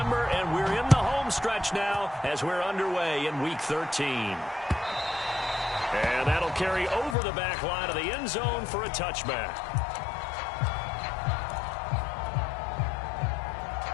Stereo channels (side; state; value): right; drops out; at 7.2 s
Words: and we're in the home stretch now as we're underway in Week 13. And that'll carry over the back line of the end zone for a touchback.